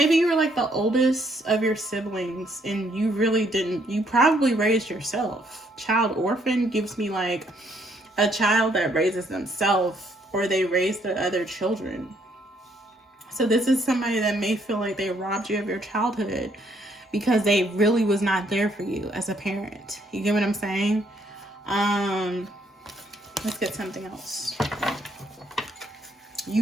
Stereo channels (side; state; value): both; normal; correlation 0.69